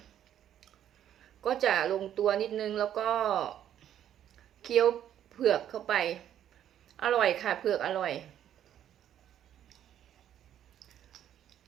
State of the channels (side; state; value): left; quieter; 10.6 dB